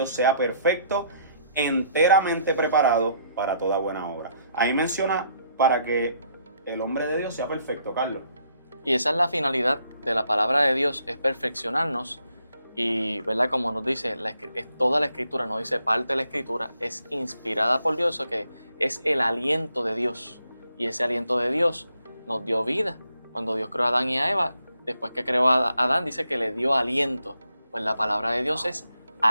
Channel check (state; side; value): inverted; both; correlation -0.72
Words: sea perfecto, enteramente preparado para toda buena obra. Ahí menciona para que el hombre de Dios sea perfecto, Carlos. Y esa es la finalidad de la palabra de Dios, es perfeccionarnos. Y, ¿verdad? Como nos dice, es toda la escritura, no dice parte de la escritura, es inspirada por Dios, eso que es el aliento de Dios. Y ese aliento de Dios nos dio vida. Cuando Dios creó a Adán y a Eva, después que creó a Adán, dice que le dio aliento. Pues la palabra de Dios es